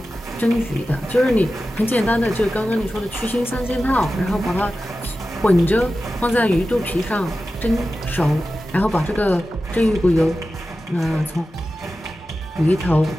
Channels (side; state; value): both; normal; correlation 0.93